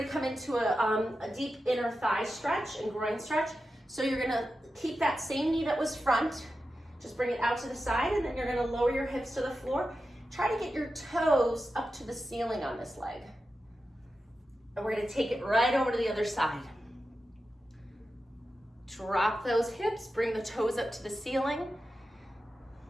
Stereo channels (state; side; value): normal; both; correlation 0.91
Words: come into a deep inner thigh stretch and groin stretch. So you're gonna keep that same knee that was front, just bring it out to the side, and then you're gonna lower your hips to the floor. Try to get your toes up to the ceiling on this leg. And we're gonna take it right over to the other side. Drop those hips, bring the toes up to the ceiling.